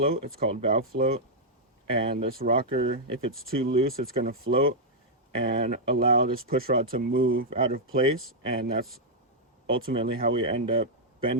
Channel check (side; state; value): both; normal; correlation -0.06